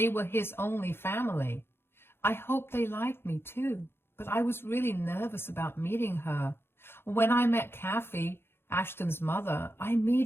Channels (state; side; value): late; right; 0.11 ms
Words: were his only family. I hoped they liked me too, but I was really nervous about meeting her. When I met Kathy, Ashton's mother, I